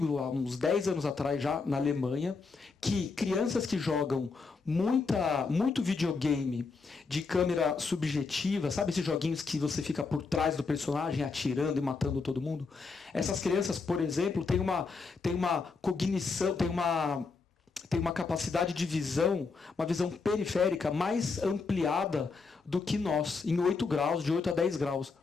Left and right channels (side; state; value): right; quieter; 4.5 dB